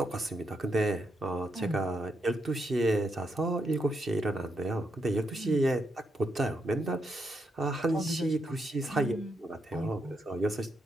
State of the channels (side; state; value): both; normal; correlation 0.81